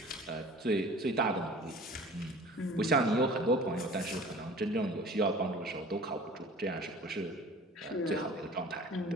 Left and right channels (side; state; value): both; normal; correlation 0.44